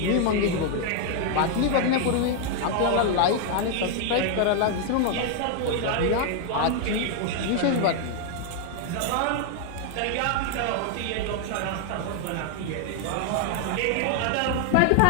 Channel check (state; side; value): different; both; correlation 0.00